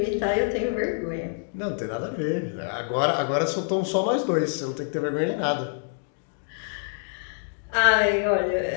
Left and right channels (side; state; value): right; silent; digital silence